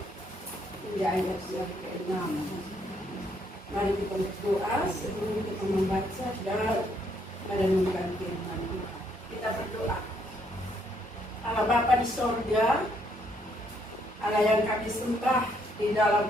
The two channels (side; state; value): both; normal; correlation 0.71